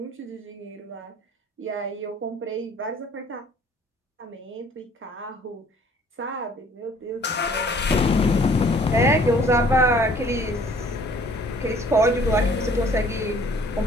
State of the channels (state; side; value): normal; both; correlation 0.56